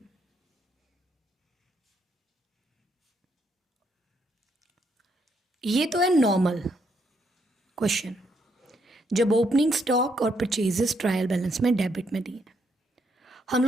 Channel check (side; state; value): both; normal; correlation 0.75